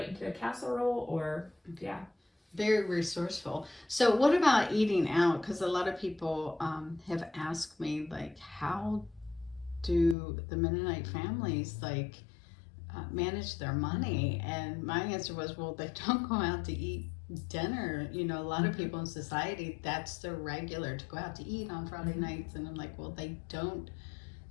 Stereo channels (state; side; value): drops out; right; at 10.2 s